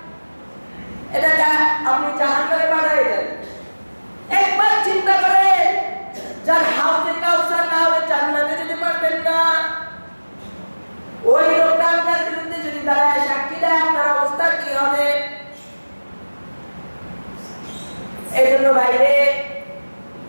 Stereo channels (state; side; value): inverted; both; correlation -1.00